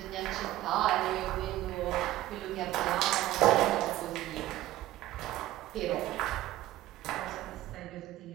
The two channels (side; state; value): left; quieter; 15.3 dB